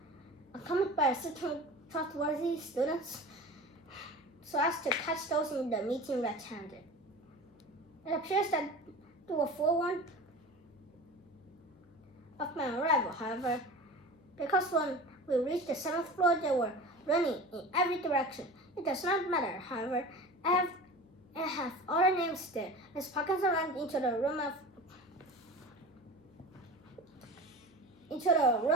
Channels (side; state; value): left; noise; hum, 28 dB below the sound